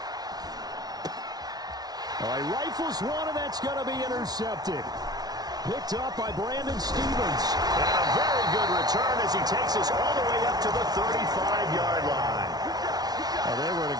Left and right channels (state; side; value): late; left; 0.19 ms